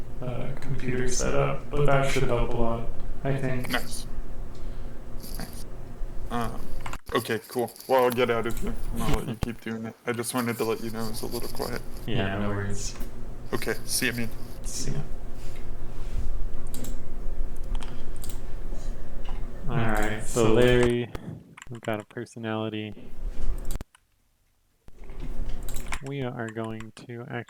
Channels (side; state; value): both; identical; correlation 1.00